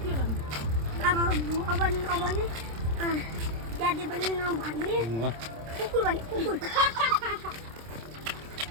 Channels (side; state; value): left; late; 26 ms